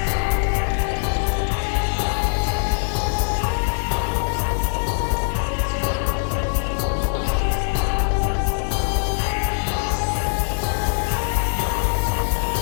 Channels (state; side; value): silent; right; 64 dB below the other